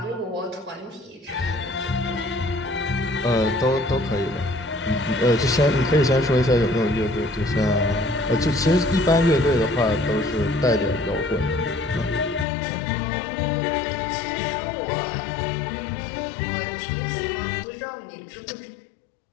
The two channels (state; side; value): drops out; right; at 12.5 s